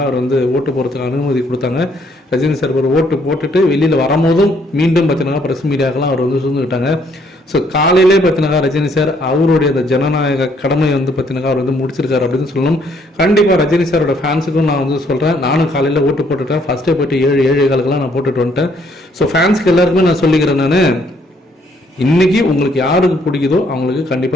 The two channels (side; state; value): both; normal; correlation 0.67